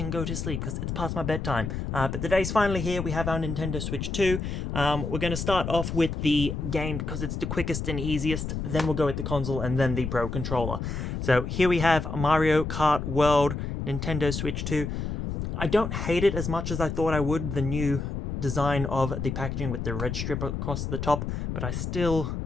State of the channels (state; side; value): noise; left; rumble, 4 dB below the sound